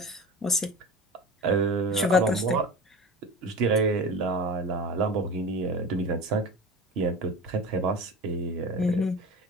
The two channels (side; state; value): both; normal; correlation 0.32